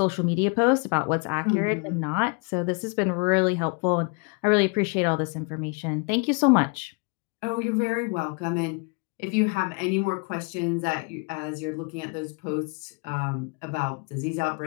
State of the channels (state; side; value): quieter; right; 33.1 dB